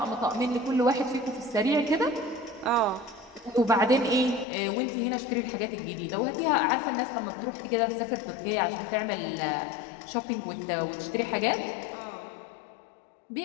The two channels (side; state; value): right; drops out; at 4.5 s